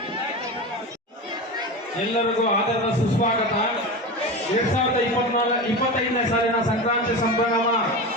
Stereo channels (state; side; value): normal; both; correlation 0.25